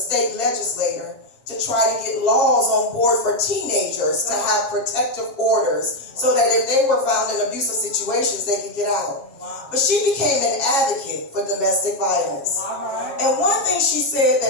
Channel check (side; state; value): right; late; 7.4 ms